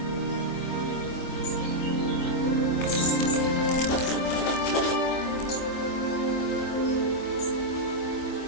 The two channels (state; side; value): late; right; 24 ms